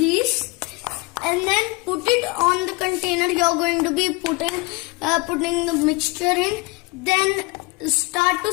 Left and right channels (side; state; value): right; quieter; 25.6 dB